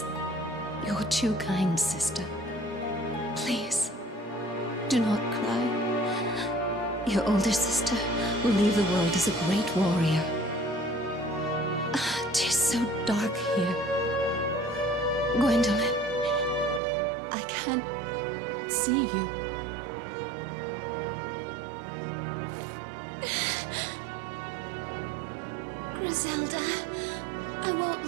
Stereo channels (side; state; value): left; drops out; at 16.8 s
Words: You're too kind, sister. Please, do not cry. Your older sister will leave the world as a great warrior. Tis so dark here. Gwendolyn, I can't see you. Griselda, I won't